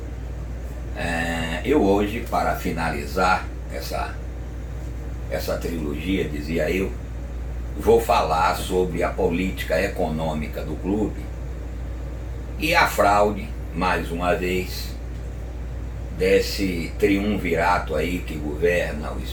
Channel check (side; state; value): both; identical; correlation 1.00